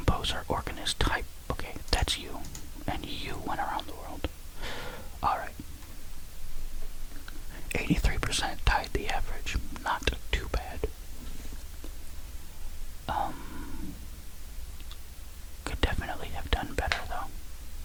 organist type. Okay, that's you. And you went around the world. Alright. 83% tied the average. Not too bad. Could definitely have done better, though.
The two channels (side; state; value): both; identical; correlation 1.00